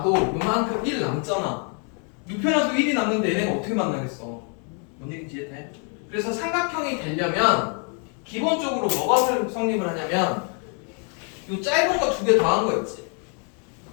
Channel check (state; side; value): quieter; right; 39.6 dB